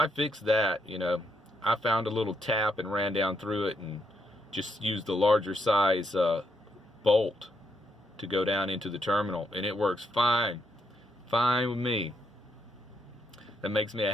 fixed that. You know, I found a little tap and ran down through it and just used the larger size bolt to go down into the terminal, and it works fine with me. That makes me a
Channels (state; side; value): normal; both; correlation 0.78